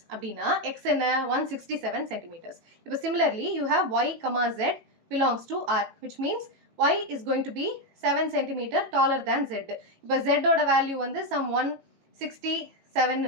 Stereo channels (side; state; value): left; late; 18 ms